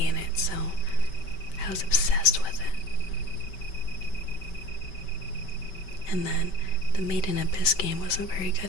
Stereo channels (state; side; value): late; right; 5.2 ms